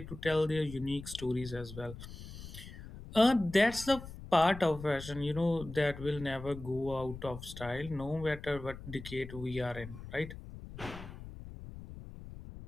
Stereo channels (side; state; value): left; noise; rumble, 13 dB below the sound